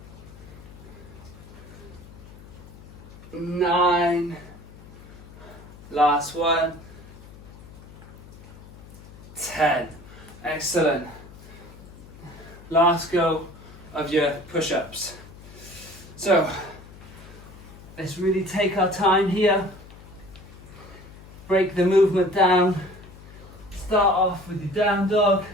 9. Last one. 10. Excellent. Last go of your push-ups. So let's really take our time here. Break the movement down. Start off with your down dog.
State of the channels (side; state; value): left; noise; hum, 18 dB below the sound